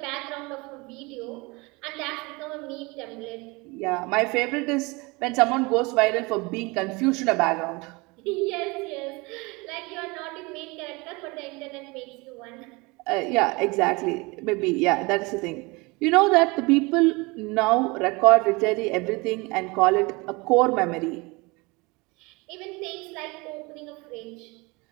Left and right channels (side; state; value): left; quieter; 25.8 dB